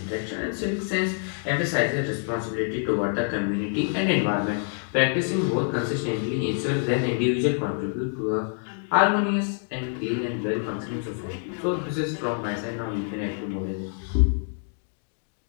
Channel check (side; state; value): right; silent; 59 dB below the other